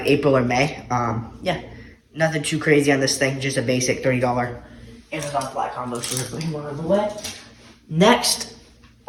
April or May. Yeah, nothing too crazy on this thing, just a basic $30 Amazon fly combo. So we're putting one on the way. Next,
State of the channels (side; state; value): both; identical; correlation 1.00